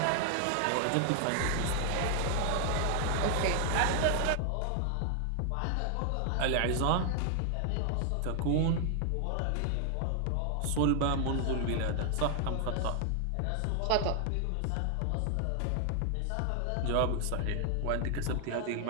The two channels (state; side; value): different; both; correlation 0.00